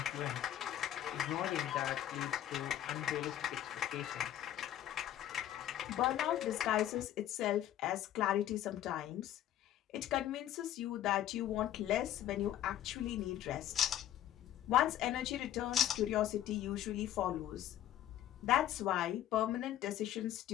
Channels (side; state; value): right; quieter; 12.0 dB